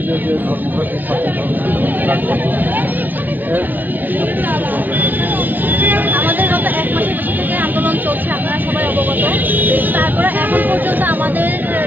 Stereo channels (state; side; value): late; left; 0.089 ms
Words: যে ধর্মঘট আমাদের গত 1 মাসের বেশি থেকে আন্দোলন চলছে, আপনারা সবাই অবগত। তারপরে এখন পর্যন্ত আমাদের